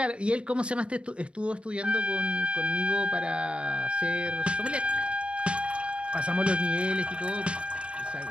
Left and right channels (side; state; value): left; late; 0.058 ms